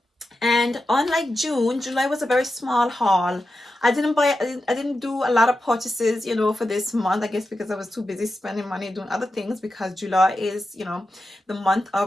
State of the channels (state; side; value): normal; both; correlation 0.90